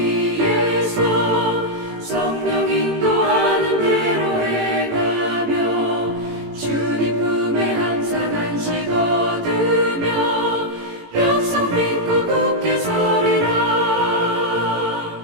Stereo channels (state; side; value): late; left; 18 ms